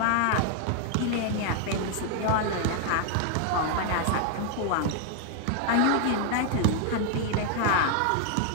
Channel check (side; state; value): both; different; correlation 0.00